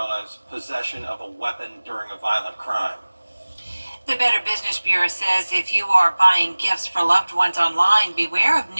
as possession of a weapon during a violent crime. The Better Business Bureau says if you are buying gifts for loved ones online, beware of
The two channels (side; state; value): both; inverted; correlation -1.00